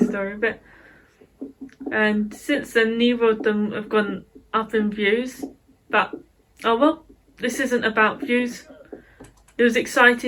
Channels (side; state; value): both; identical; correlation 1.00